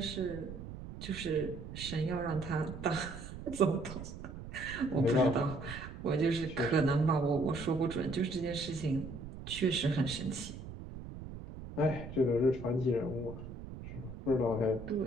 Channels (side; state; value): right; noise; rumble, 11 dB below the sound